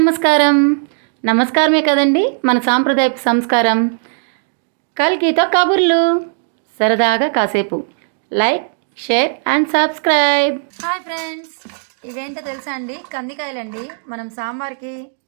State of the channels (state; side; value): silent; left; digital silence